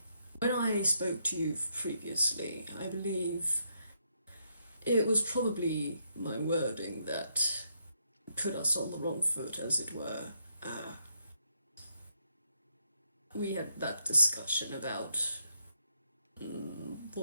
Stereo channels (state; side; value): inverted; both; correlation -0.78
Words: When I spoke to you previously, I believe it was probably my wording that put us on the wrong foot, as it were. Uh, we had that discussion about